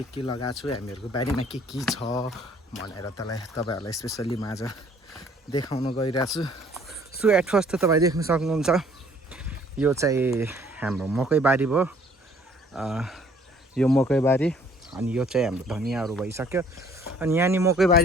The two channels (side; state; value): both; normal; correlation 0.59